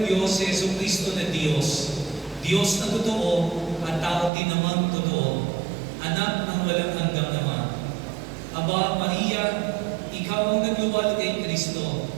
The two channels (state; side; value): drops out; left; at 4.3 s